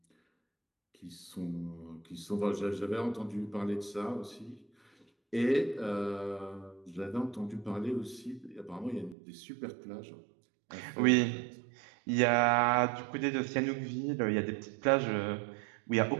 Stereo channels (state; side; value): drops out; left; at 9.2 s